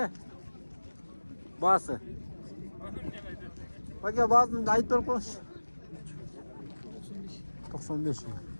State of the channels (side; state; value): both; inverted; correlation -1.00